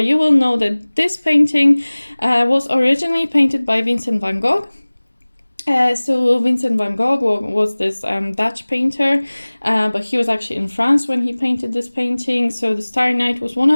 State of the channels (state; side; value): inverted; both; correlation -1.00